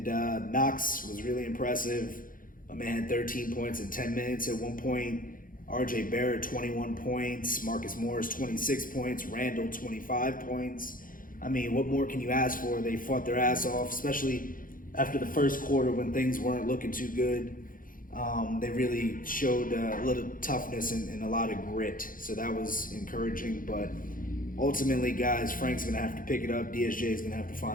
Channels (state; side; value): late; right; 0.40 ms